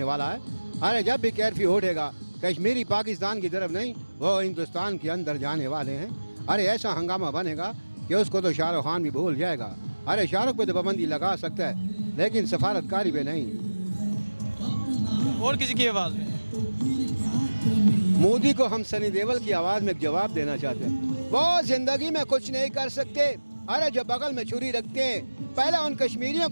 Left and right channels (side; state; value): both; inverted; correlation -1.00